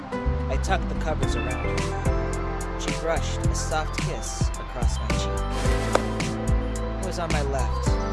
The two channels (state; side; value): identical; both; correlation 1.00